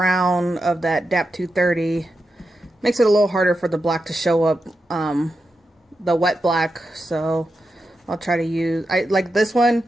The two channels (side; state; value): both; normal; correlation 0.88